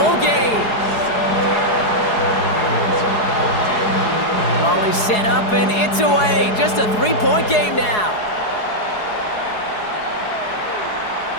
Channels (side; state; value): right; late; 4.8 ms